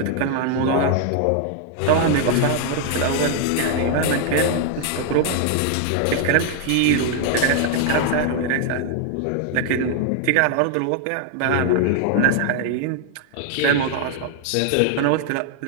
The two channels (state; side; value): different; both; correlation 0.00